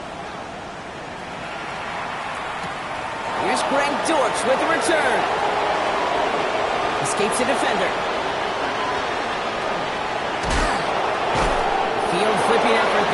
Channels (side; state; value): both; identical; correlation 1.00